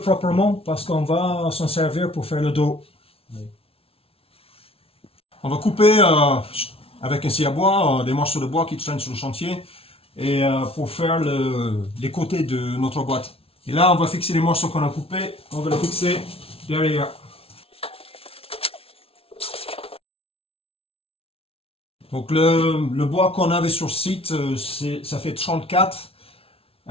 parce qu'on va s'en servir pour faire le dos. On va couper avec un scie à bois des morceaux de bois qui traînent sur le chantier et pour faire les côtés de notre boîte. Et là, on va fixer les morceaux qu'on a coupés, on va les fixer derrière. Donc le bois qu'on avait sur site, ça fait 34.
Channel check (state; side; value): late; right; 0.27 ms